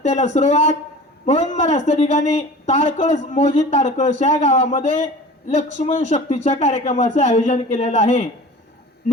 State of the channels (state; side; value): normal; both; correlation 0.39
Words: सुरुवात म्हणून महाराज त्या ठिकाणी ताडकळस मोजी ताडकळस या गावामध्ये लक्ष्मण शक्तीच्या कार्यक्रमाचे आयोजन केलेलं आहे।